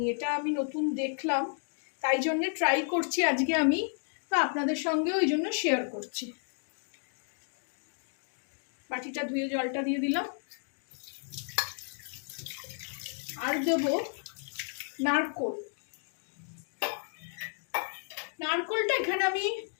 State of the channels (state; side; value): silent; right; 56 dB below the other